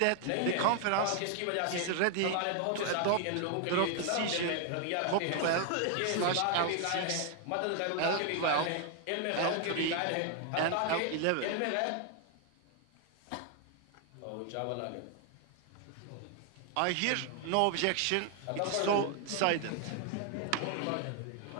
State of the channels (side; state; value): both; different; correlation 0.00